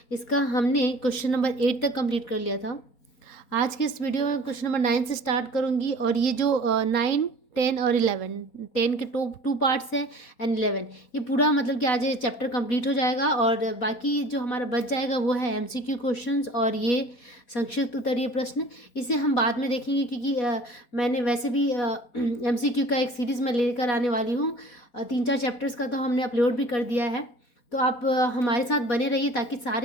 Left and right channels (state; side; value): late; right; 4.1 ms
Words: इसका हमने क्वेश्चन नंबर 8 तक कंप्लीट कर लिया था। आज के इस वीडियो में क्वेश्चन नंबर 9 से स्टार्ट करूंगी और ये जो 9, 10 और 11, 10 के टू पार्ट्स हैं एंड 11, ये पूरा मतलब कि आज ये चैप्टर कंप्लीट हो जाएगा और बाकी जो हमारा बच जाएगा वो है एमसीक्यू क्वेश्चंस और ये संक्षिप्त उत्तरीय प्रश्न। इसे हम बाद में देखेंगे क्योंकि मैंने वैसे भी एमसीक्यू का एक सीरीज़ में लेकर आने वाली हूँ। 3-4 चैप्टर्स का तो हमने अपलोड भी कर दिया है, तो आप हमारे साथ बने रहिए ताकि